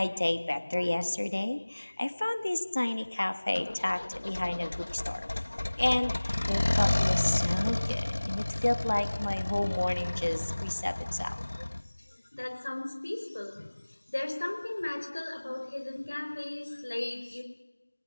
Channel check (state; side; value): inverted; both; correlation -1.00